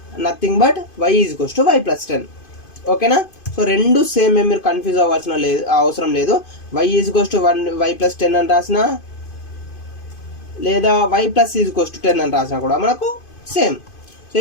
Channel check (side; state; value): right; late; 2.5 ms